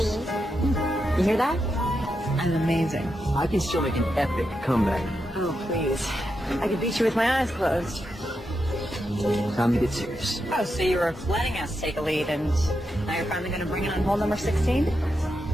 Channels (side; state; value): both; normal; correlation 0.85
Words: You hear that? I'm amazing. I can still make an epic comeback. Oh, please. I could beat you with my eyes closed. Time to get serious. Oh, so you were letting us take a lead, and now you're finally going to bring it on hole number 16?